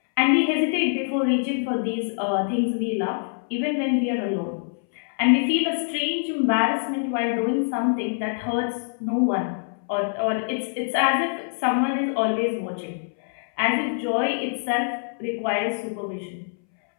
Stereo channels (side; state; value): right; silent; 62 dB below the other